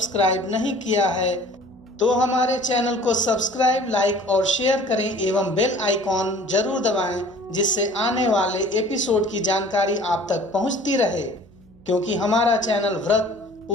नहीं किया है तो हमारे चैनल को सब्सक्राइब, लाइक और शेयर करें एवं बेल आइकॉन जरूर दबाएं, जिससे आने वाले एपिसोड की जानकारी आप तक पहुंचती रहे। क्योंकि हमारा चैनल व्रत,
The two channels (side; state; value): right; noise; hum, 27 dB below the sound